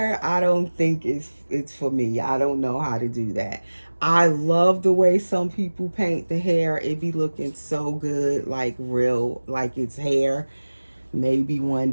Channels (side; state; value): both; inverted; correlation -1.00